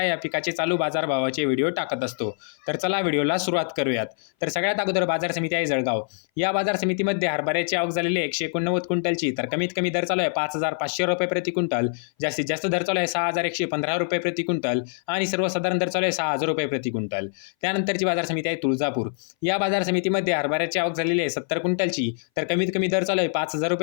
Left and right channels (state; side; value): silent; right; 59 dB below the other